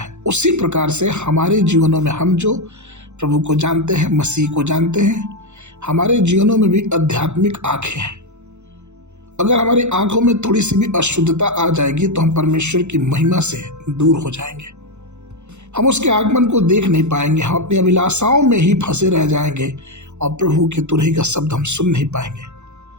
उसी प्रकार से हमारे जीवनों में हम जो प्रभु को जानते हैं, मसीह को जानते हैं, हमारे जीवनों में भी आध्यात्मिक आंखें हैं। अगर हमारी आंखों में थोड़ी सी भी अशुद्धता आ जाएगी तो हम परमेश्वर की महिमा से दूर हो जाएंगे। हम उसके आगमन को देख नहीं पाएंगे, हम अपनी अभिलाषाओं में ही फंसे रह जाएंगे और प्रभु की तुरही का शब्द हम सुन नहीं पाएंगे।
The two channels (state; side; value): late; left; 0.83 ms